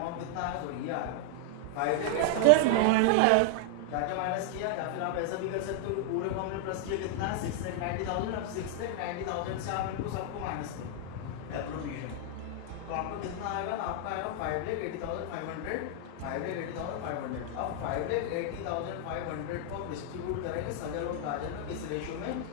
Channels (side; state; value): both; different; correlation 0.00